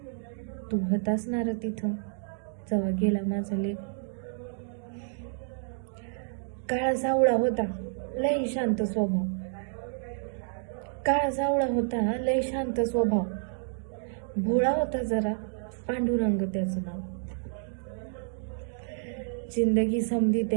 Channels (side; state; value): left; silent; digital silence